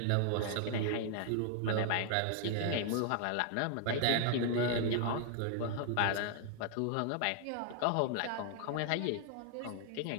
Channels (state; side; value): different; both; correlation 0.00